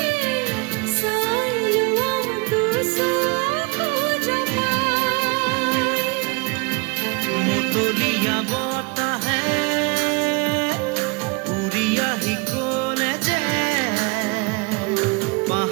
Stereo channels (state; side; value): quieter; left; 29.0 dB